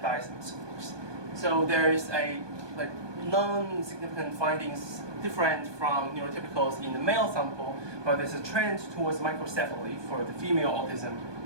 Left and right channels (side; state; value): left; late; 1.2 ms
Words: scores. So there is a non-significant findings different from neurotypicals in the male sample, but there's a trend towards microcephaly for the female autism